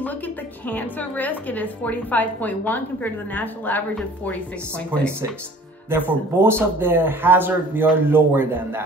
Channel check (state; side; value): normal; both; correlation 0.49